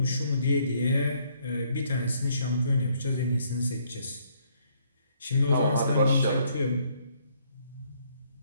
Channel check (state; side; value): inverted; both; correlation -0.68